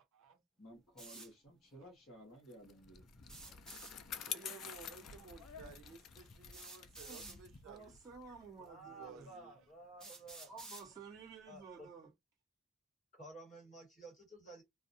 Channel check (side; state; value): both; normal; correlation 0.31